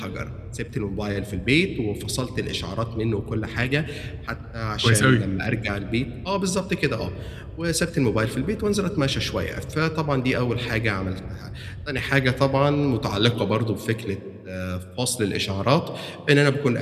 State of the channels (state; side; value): identical; both; correlation 1.00